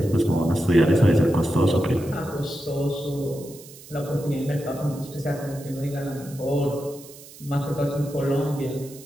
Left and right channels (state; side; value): noise; right; hiss, 19 dB below the sound